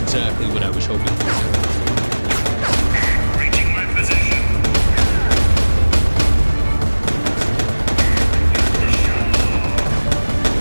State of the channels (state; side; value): inverted; both; correlation -1.00